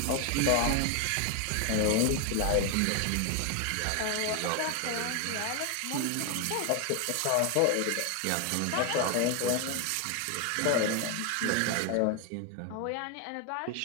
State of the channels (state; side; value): different; both; correlation 0.01